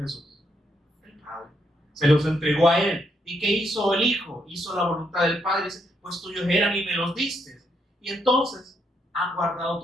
Jesús? El Padre. Se los entregó a Él. ¿Y qué hizo el Hijo? Hizo la voluntad del Padre. Dice, pues tuyos eran y me los diste. Y entonces han guardado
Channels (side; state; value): both; normal; correlation 0.77